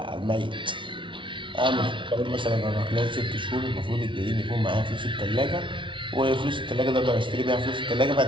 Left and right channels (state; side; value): late; left; 0.24 ms